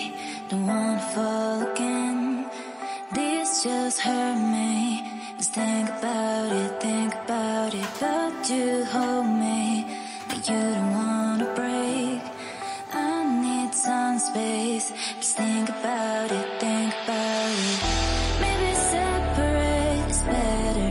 don't wanna fall again. This just hurt me. Just think about it. But you hold me, but you don't wanna break. I need some space, just think about it.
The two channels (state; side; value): identical; both; correlation 1.00